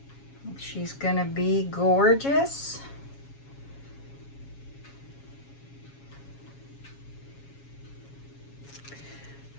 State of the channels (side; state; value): right; late; 7.2 ms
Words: She's gonna be gorgeous.